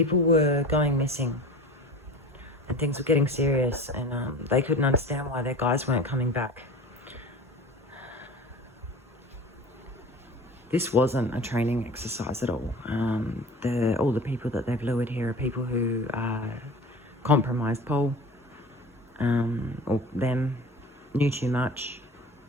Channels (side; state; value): both; normal; correlation 0.38